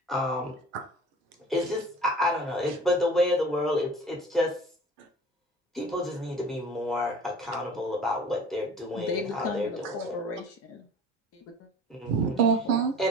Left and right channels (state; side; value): normal; both; correlation 0.44